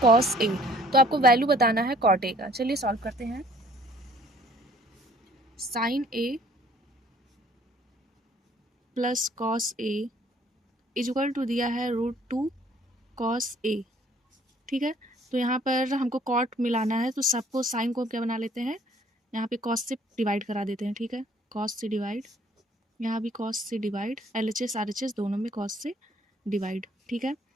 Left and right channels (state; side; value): normal; both; correlation 0.58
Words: cos A. तो आपको वैल्यू बताना है कॉट ए का। चलिए सॉल्व करते हैं। Sine A plus cos A is equal to दिया है √2 कॉस ए। ठीक है, तो यहाँ पर हमको कॉट मिलाना है, तो सबको साइन को क्या बना लेते हैं, यहाँ पे कॉस से डिवाइड करा देते हैं। ठीक है, कॉस से डिवाइड, यहाँ भी कॉस से डिवाइड, LHS RHS दोनों में कॉस से डिवाइड। ठीक है,